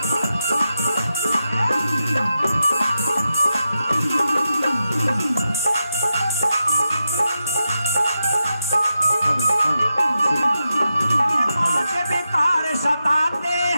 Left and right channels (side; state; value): both; inverted; correlation -0.88